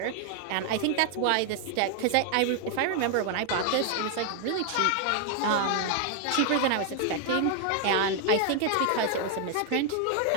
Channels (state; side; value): different; both; correlation 0.00